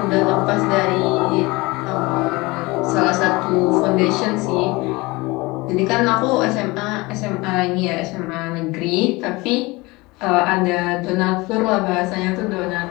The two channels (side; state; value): right; quieter; 23.0 dB